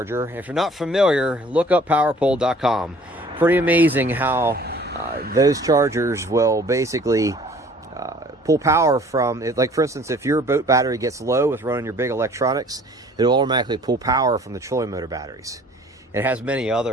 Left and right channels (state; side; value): normal; both; correlation 0.53